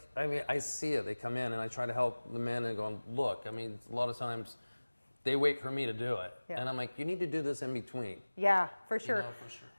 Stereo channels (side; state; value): both; inverted; correlation -1.00